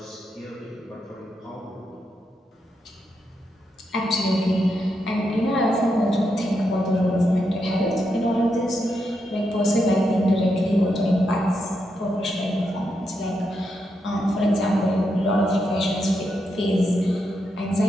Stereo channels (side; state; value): both; normal; correlation 0.83